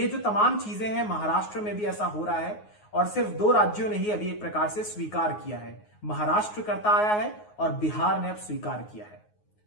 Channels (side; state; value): right; late; 9.5 ms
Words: जो तमाम चीजें हैं, महाराष्ट्र में भी ऐसा हो रहा है और सिर्फ 2 राज्यों ने ही अभी एक प्रकार से स्वीकार किया है। महाराष्ट्र करता आया है और बिहार ने अब स्वीकार किया है।